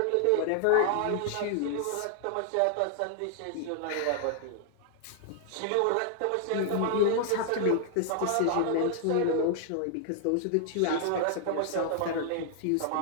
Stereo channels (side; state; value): both; different; correlation 0.00